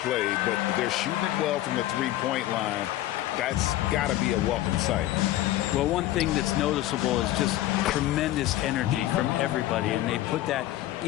played, but they're shooting it well from the three-point line. That's got to be a welcome sight. Well, one thing that's noticeable is just tremendous energy from everybody, and they put that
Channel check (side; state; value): right; quieter; 14.7 dB